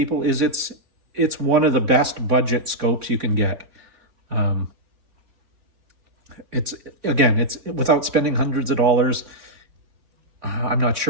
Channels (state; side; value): late; left; 3.6 ms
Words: is it's one of the best budget scopes you can get. It's without spending hundreds of dollars. I'm not